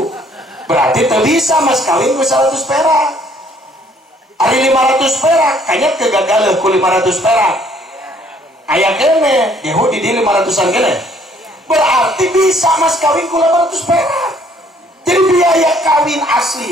Berarti teu bisa mas kawin ku 100 perak. Ari 500 perak kayaknya kegagalan ku 500 perak. Aya kene, gehu di 500-an kene. Berarti bisa mas kawin ku 800 perak. Jadi biaya kawin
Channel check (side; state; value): both; normal; correlation 0.62